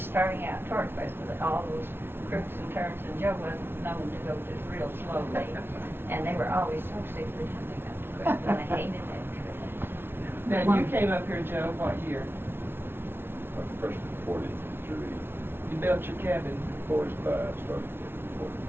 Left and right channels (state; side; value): late; left; 0.11 ms